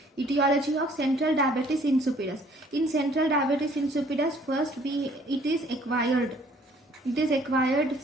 etiology of central diabetes insipidus. In central diabetes insipidus, first it is acquired. It is acquired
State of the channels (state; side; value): normal; both; correlation 0.58